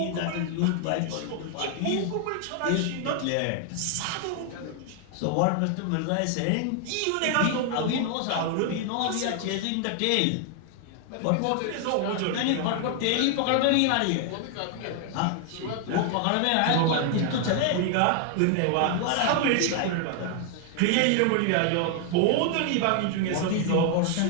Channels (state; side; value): different; both; correlation 0.00